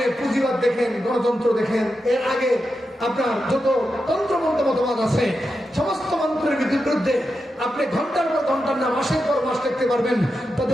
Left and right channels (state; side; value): normal; both; correlation 0.88